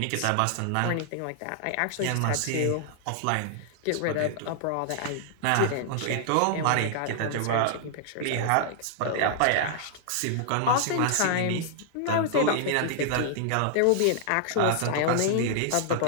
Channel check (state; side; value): different; both; correlation -0.01